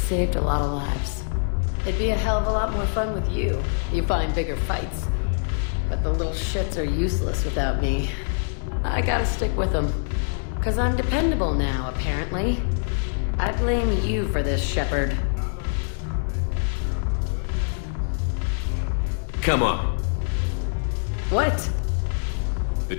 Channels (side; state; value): right; silent; digital silence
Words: a lot of lives. It'd be a hell of a lot more fun with you. You find bigger fights. But the little shits are useless without me. I gotta stick with them. 'Cause I'm dependable now, apparently. I blame you for this, Shepard. Come on. What? The